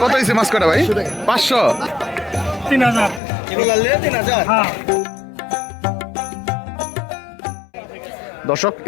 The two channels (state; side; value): drops out; right; at 3.2 s